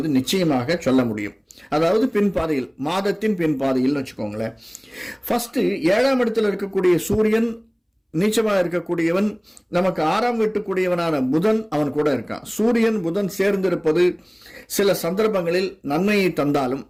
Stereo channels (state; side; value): identical; both; correlation 1.00